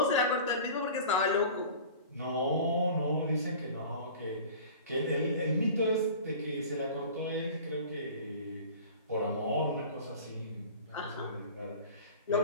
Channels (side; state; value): both; inverted; correlation -0.40